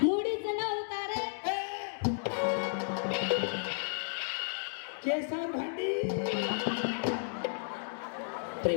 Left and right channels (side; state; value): right; silent; digital silence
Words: मुडीचं नव्हता रे. केसा भांडी.